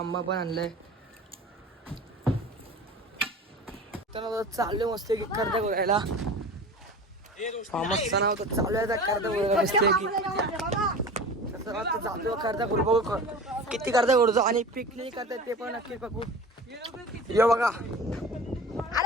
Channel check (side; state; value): both; normal; correlation 0.36